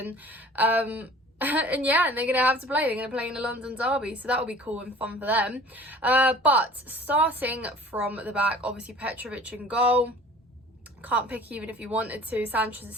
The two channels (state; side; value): normal; both; correlation 0.46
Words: and yeah, and they're going to have to play. They're going to play in the London derby, so that will be cool and fun for them. But starting from the back, obviously Petrovic in goal. Can't pick even if you wanted to. Sanchez is